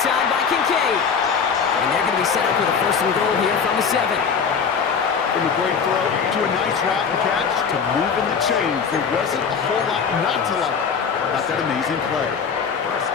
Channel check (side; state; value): right; quieter; 6.3 dB